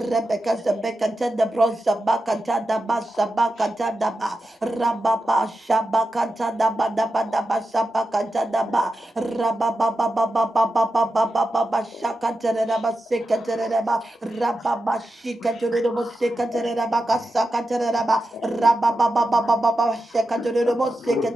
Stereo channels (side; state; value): both; normal; correlation 0.90